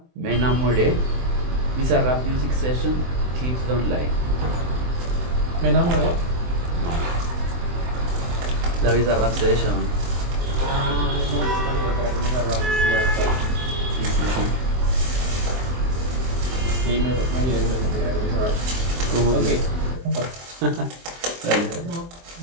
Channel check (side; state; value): left; late; 23 ms